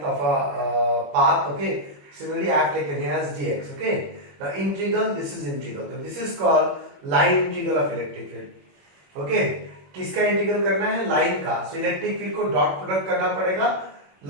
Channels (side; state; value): left; late; 21 ms